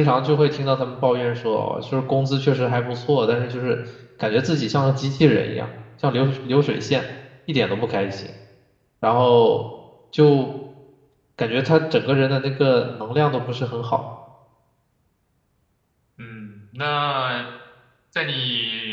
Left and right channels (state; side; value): identical; both; correlation 1.00